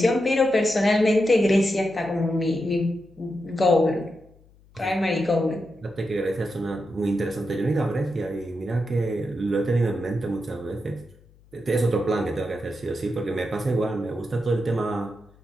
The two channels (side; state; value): left; noise; hum, 28 dB below the sound